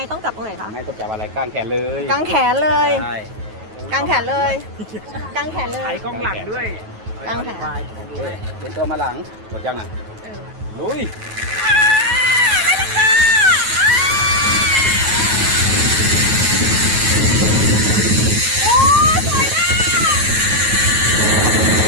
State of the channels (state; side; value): late; left; 9.3 ms